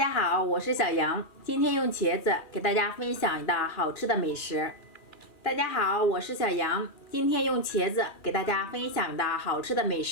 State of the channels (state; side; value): late; right; 2.4 ms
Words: 好，我是小杨，今天用茄子给大家分享一道好吃的美食。大家好，我是小杨，今天用茄子给大家分享一道好吃的美